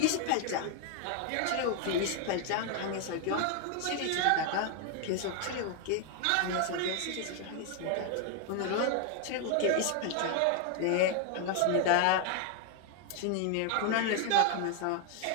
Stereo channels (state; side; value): different; both; correlation 0.00